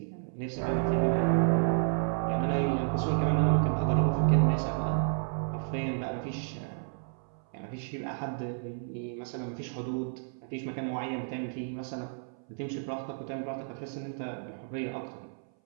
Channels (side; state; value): left; silent; 57 dB below the other